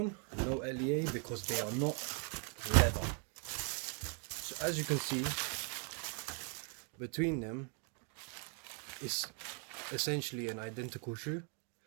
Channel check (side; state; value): left; quieter; 39.6 dB